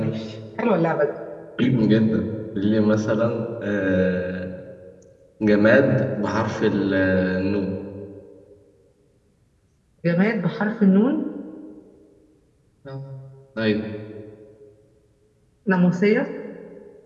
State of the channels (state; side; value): identical; both; correlation 1.00